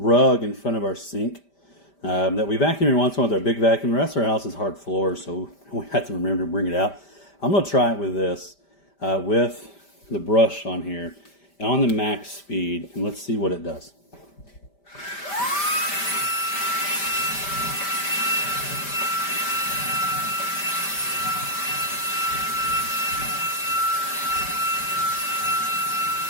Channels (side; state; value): right; late; 5.1 ms